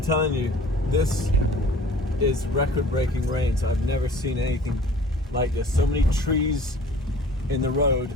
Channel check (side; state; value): both; normal; correlation 0.48